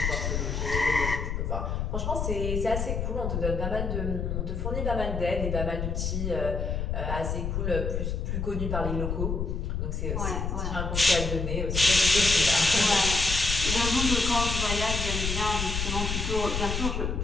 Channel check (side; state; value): left; noise; rumble, 2 dB below the sound